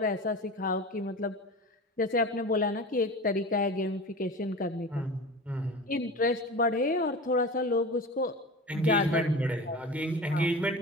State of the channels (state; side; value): normal; both; correlation 0.32